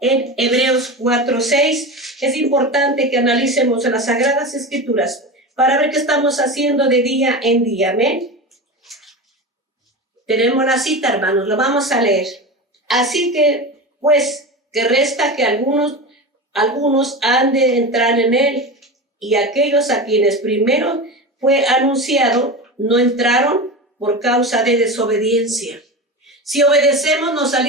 en Hebreos 4:6. Es importante que analicemos en las Sagradas Escrituras para ver qué estamos haciendo de día en día. Amén. Tenemos la cita, hermanos, lo vamos a leer. Así que, pues, que resta que algunos han de entrar en él, y aquellos a quienes primero fue anunciado no entraron por causa de desobediencia. Si obedecemos, nos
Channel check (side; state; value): both; normal; correlation 0.25